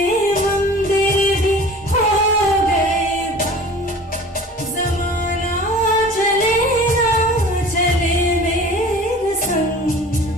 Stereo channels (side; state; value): both; normal; correlation 0.42